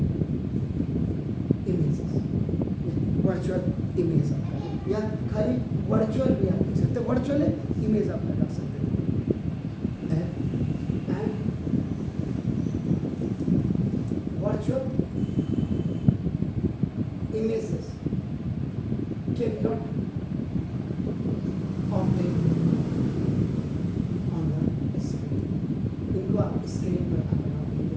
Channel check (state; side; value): identical; both; correlation 1.00